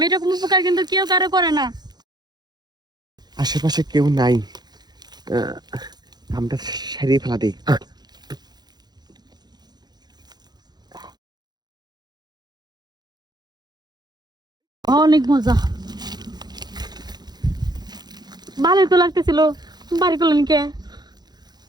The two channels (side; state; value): left; late; 0.20 ms